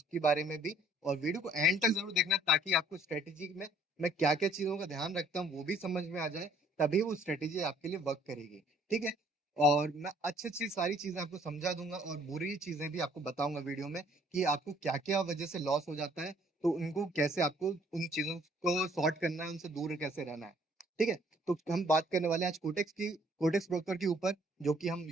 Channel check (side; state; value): both; normal; correlation 0.60